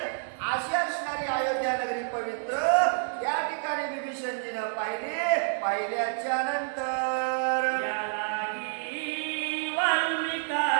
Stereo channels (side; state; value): left; silent; digital silence